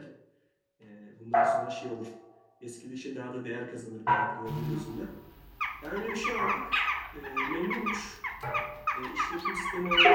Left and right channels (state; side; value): identical; both; correlation 1.00